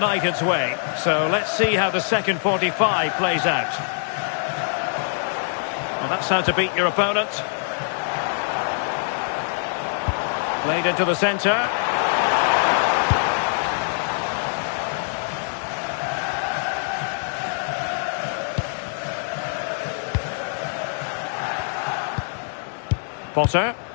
way. So let's see how the second 45 plays out. Well, that's how to beat your opponent. Played into the centre. Potter.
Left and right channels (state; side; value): silent; right; digital silence